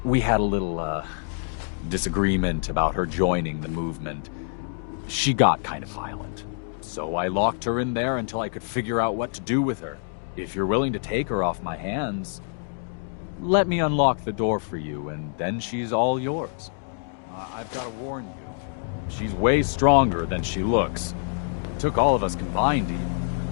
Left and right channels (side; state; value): right; silent; digital silence